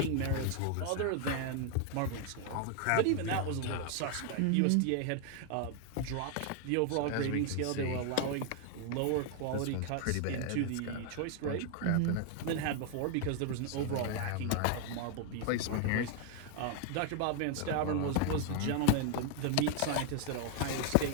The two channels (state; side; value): different; both; correlation 0.00